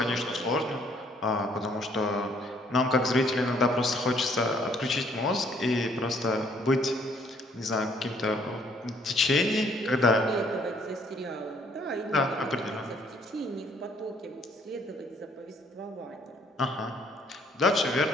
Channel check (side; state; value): both; normal; correlation 0.64